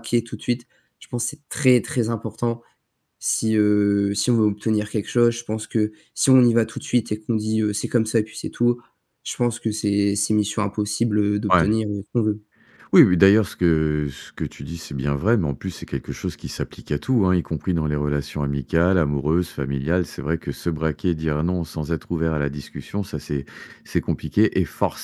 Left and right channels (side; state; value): both; identical; correlation 1.00